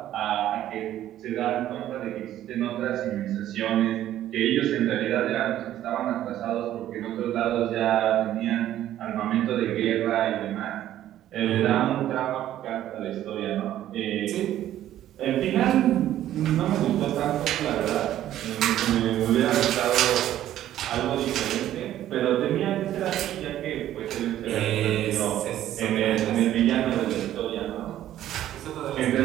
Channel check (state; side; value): quieter; left; 12.5 dB